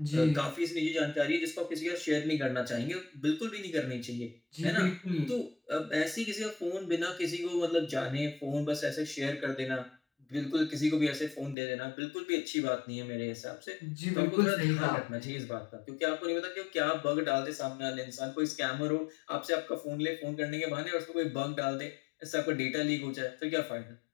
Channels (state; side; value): drops out; right; at 11.6 s